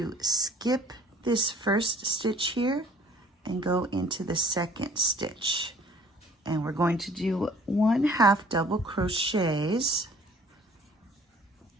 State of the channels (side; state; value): both; normal; correlation 0.55